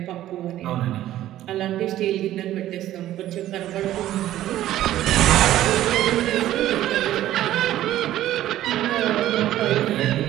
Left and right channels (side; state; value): left; quieter; 13.5 dB